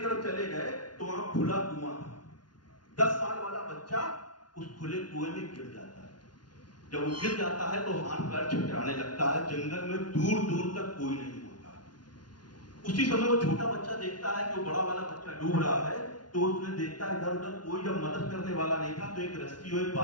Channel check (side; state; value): right; late; 0.70 ms